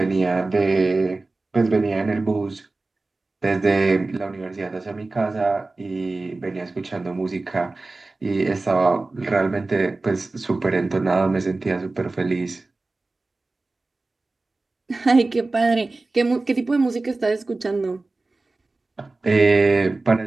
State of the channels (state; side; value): quieter; left; 3.3 dB